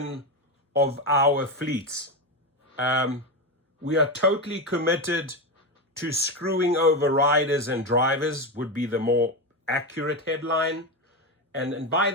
of our fleets. We are totally committed to screwing over riders and drivers would be the more accurate headline. And by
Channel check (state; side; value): normal; both; correlation 0.14